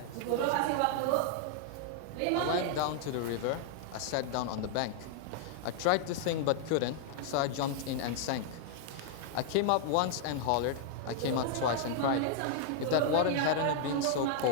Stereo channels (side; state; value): both; different; correlation -0.01